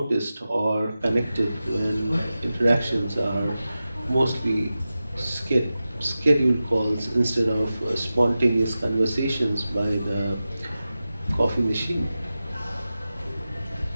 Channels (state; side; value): inverted; both; correlation -0.94